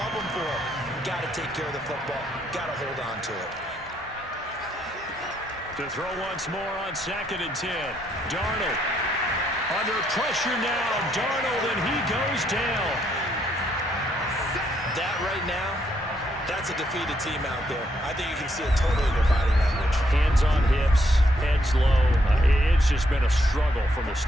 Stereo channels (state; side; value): normal; both; correlation 0.74